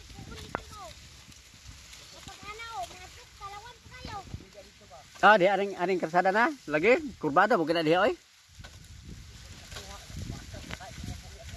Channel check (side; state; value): both; identical; correlation 1.00